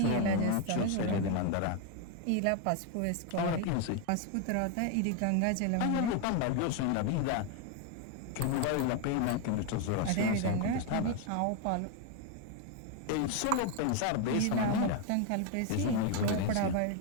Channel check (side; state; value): both; different; correlation 0.01